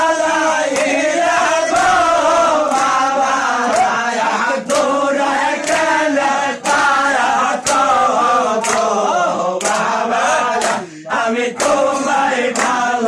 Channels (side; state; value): both; identical; correlation 1.00